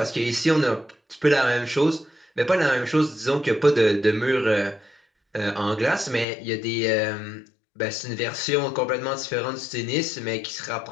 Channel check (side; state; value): right; drops out; at 6.2 s